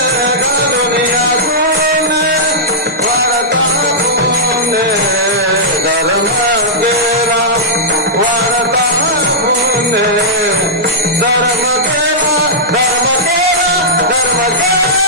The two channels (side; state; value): both; normal; correlation -0.11